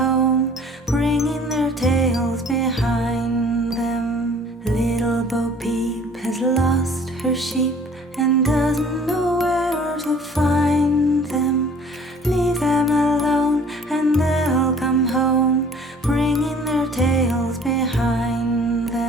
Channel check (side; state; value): both; normal; correlation 0.52